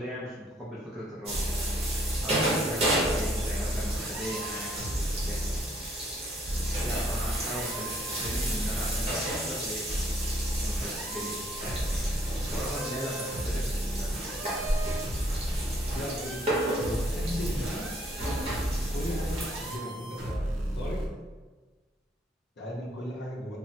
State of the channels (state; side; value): normal; both; correlation 0.65